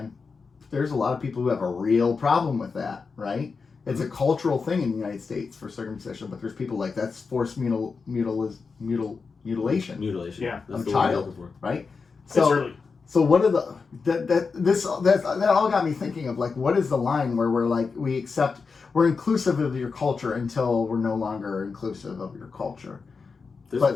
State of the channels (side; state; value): right; quieter; 4.9 dB